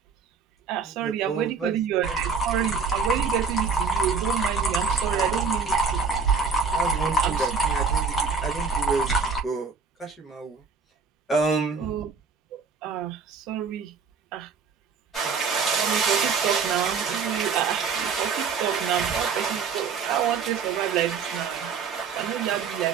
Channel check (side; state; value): left; quieter; 5.3 dB